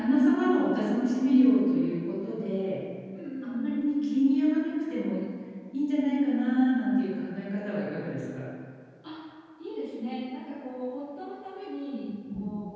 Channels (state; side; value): identical; both; correlation 1.00